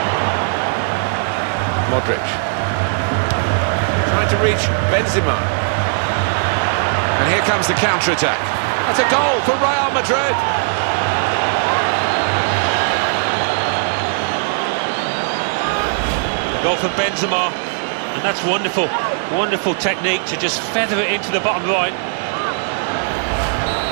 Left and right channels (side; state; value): left; silent; 67 dB below the other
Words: Modric trying to reach Benzema, and here comes the counter-attack. That's a goal for Real Madrid. Goal for Benzema, and that's wonderful. Wonderful technique to just feather it into the bottom right.